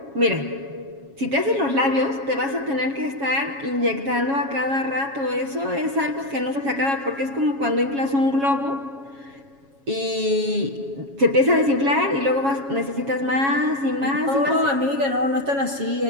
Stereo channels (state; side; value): late; left; 7.3 ms